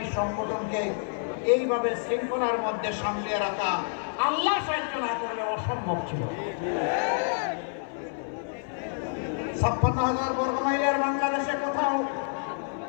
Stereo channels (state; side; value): silent; right; 57 dB below the other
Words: সংগঠনকে এইভাবে শৃঙ্খলার মধ্যে সামলিয়ে রাখা আল্লাহ সাহায্য না করলে অসম্ভব ছিল। 56,000 বর্গ মাইলের বাংলাদেশে কোথাও